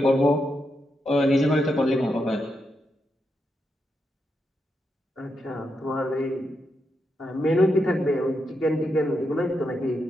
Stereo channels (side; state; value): both; normal; correlation 0.84